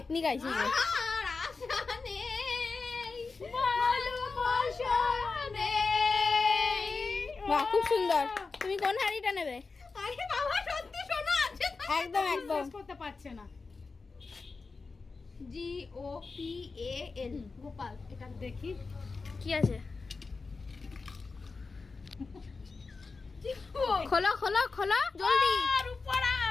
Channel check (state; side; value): quieter; right; 4.2 dB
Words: গাইছি যে। আর আশা নেই, ভালোবাসা নেই। বাহ, খুব সুন্দর। তুমি কোন হাড়িটা নেবে? আরে বাবা, সত্যি শোনা আছে তো? একদম একদম। করতে পারছে না। GOPAL গোপাল। এটা দেখি কি আছে? খোলো খোলো খোলো জলদি। রূপরা